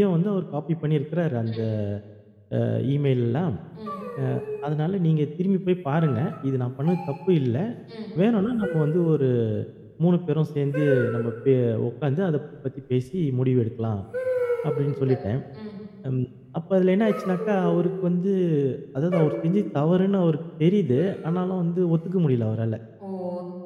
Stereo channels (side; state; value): both; identical; correlation 1.00